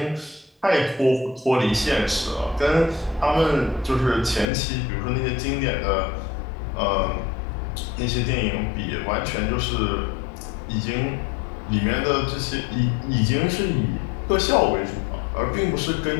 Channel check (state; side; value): drops out; right; at 4.5 s